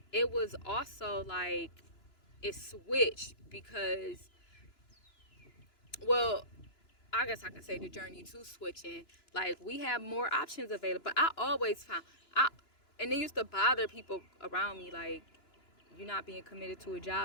it was also like, it switched because, well, I guess I can say the journey to switching. Like, we have more options available. But I always found, and it used to bother people around me, like, you're not being committed to a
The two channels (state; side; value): late; right; 2.9 ms